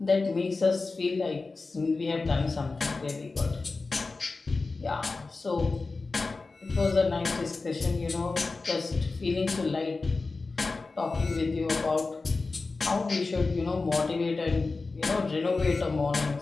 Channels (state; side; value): quieter; right; 3.8 dB